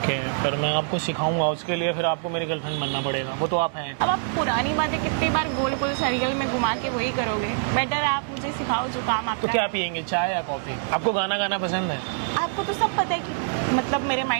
है, फिर मैं आपको सिखाऊंगा। उसके लिए फिर आपको मेरी गर्लफ्रेंड बनना पड़ेगा। वो तो आप हैं। अब आप पुरानी बातें कितनी बार गोल गोल सर्कल में घुमा के वही करोगे। बेटर है आप मुझे सिखाओ जो काम आप। तो क्या पियेंगे, चाय या कॉफी? आपको गाना गाना पसंद है? आपको तो सब पता है कि मतलब मेरे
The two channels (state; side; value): silent; left; digital silence